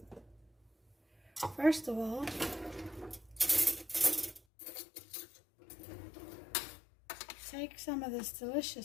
first of all take some of this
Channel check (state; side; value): drops out; right; at 4.4 s